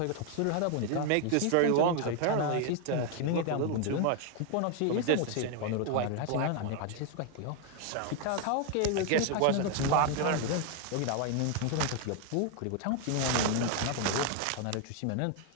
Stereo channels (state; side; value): different; both; correlation 0.00